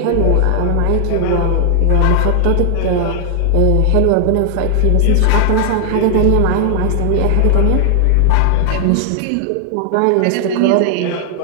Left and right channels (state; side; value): different; both; correlation 0.00